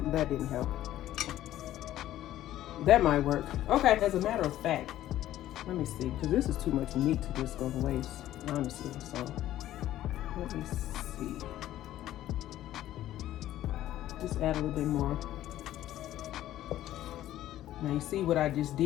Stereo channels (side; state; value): right; quieter; 13.4 dB